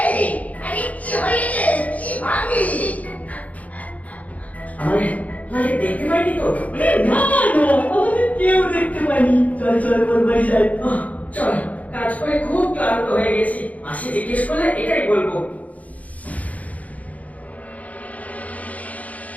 আরে কি হয়েছে? কি ভাবি? আমাদের দেখতে পাইনি তো? না না, আমাদের কেউ দেখতে পাইনি। চল চল, ওর বাড়ি যাই। চল, কাজ করে খুব ক্লান্ত হয়ে গেছি। মাসি জিজ্ঞেস করলে এটাই বলবো।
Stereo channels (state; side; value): late; right; 0.071 ms